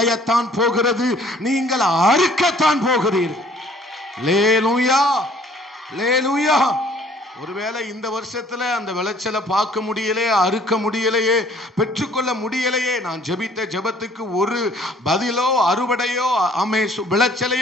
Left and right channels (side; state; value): both; normal; correlation 0.57